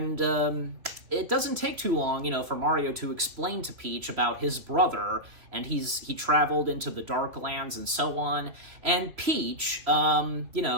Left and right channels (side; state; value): left; late; 3.0 ms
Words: it doesn't take too long, for Mario to explain to Peach about his brother, and he traveled into the Dark Lands and so on, and Peach,